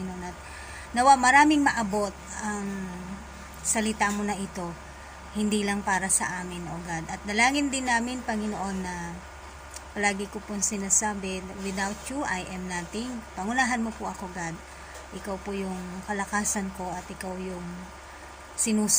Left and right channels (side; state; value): both; identical; correlation 1.00